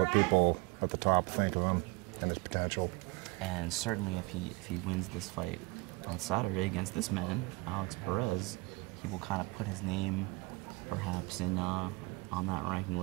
people at the top think of him and his potential. And certainly if he wins this fight on Saturday against this man, Alex Perez, he will kind of put his name perhaps in on that ranking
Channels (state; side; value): quieter; left; 25.2 dB